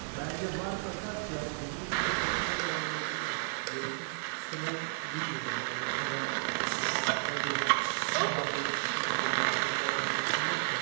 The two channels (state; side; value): silent; left; 56 dB below the other